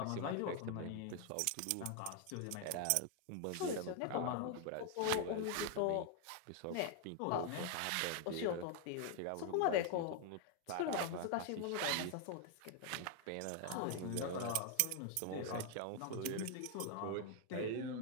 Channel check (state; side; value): different; both; correlation 0.00